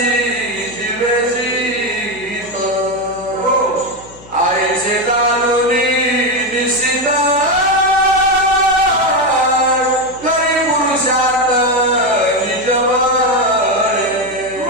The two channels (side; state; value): left; noise; hum, 21 dB below the sound